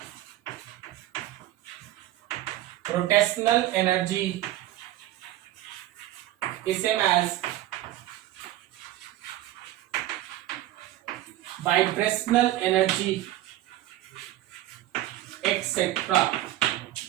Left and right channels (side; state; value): left; quieter; 14.6 dB